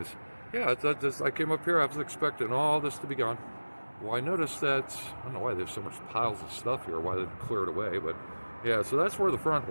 yeah, I came up here, I was expecting all this to be gone. Well, I noticed that, I don't know why there's so much piles of stuff here, why they didn't clear it away, but yeah, so that's where the front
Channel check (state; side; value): inverted; both; correlation -1.00